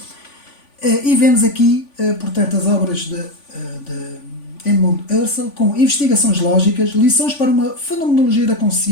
e vemos aqui, portanto, as obras de Edmund Husserl, com investigações lógicas, lições para uma fenomenologia da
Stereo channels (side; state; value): right; late; 3.5 ms